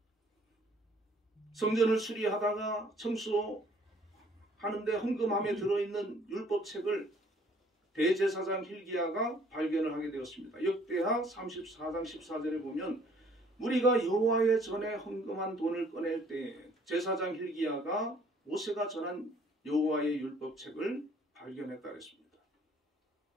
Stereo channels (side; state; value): both; normal; correlation 0.59